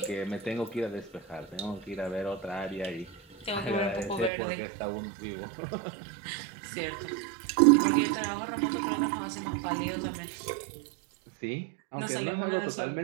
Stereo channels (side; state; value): left; drops out; at 4.3 s